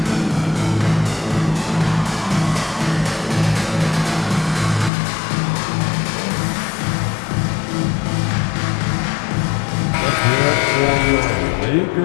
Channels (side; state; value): right; drops out; at 4.9 s